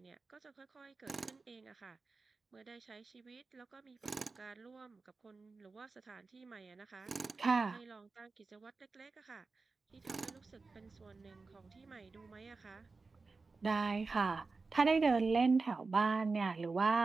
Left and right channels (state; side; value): quieter; left; 4.1 dB